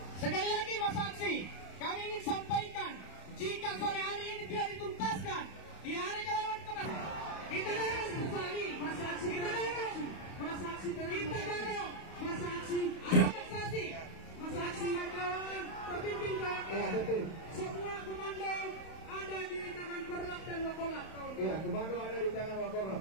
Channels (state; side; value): late; right; 31 ms